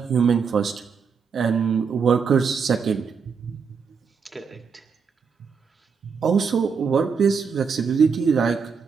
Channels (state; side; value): quieter; left; 5.9 dB